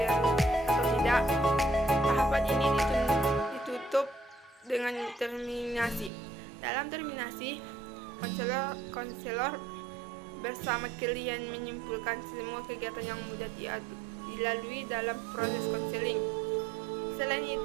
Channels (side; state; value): left; drops out; at 6.1 s